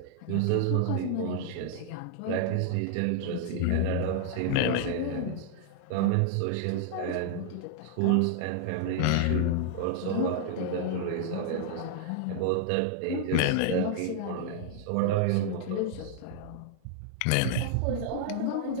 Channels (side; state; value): both; different; correlation -0.01